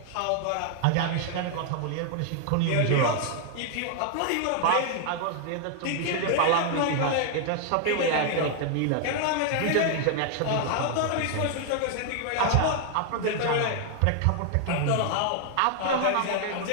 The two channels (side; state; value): both; different; correlation 0.00